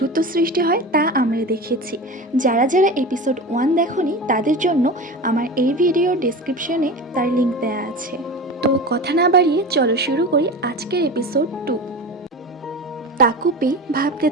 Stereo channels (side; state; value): both; normal; correlation 0.30